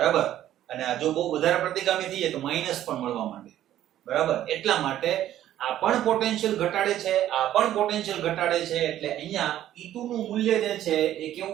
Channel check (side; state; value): left; quieter; 12.4 dB